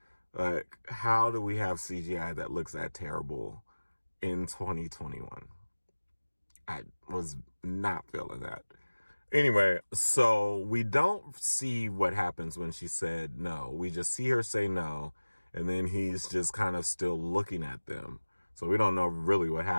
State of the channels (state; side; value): inverted; both; correlation -1.00